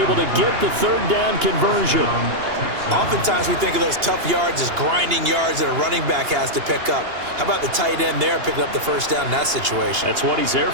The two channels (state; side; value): late; left; 2.8 ms